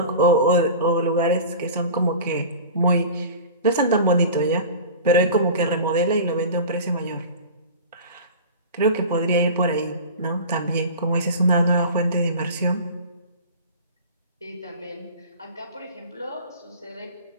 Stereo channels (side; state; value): both; inverted; correlation -0.36